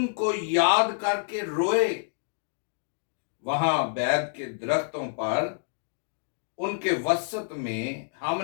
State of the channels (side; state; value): right; silent; digital silence